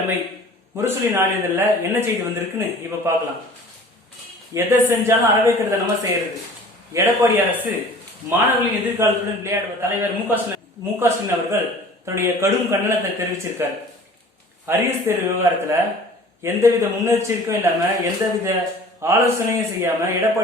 முரசொலி நாளிதழில் என்ன செய்தி வந்திருக்குன்னு இப்ப பார்க்கலாம். எதை செஞ்சாலும் அறவைக்கிறத நம்ம செய்யறது. எடப்பாடி அரசு மாணவர்களின் எதிர்காலத்துடன் விளையாடுவ தலைவர் மு.க. ஸ்டாலின் அவர்கள் தன்னுடைய கடும் கண்டனத்தை தெரிவிச்சிருக்கார். அரியர் தேர்வு விவகாரத்துல எந்தவித முன்னெச்சரிக்கையும் இல்லாம எந்தவித ஆலோசனையும் செய்யாம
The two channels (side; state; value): both; normal; correlation 0.46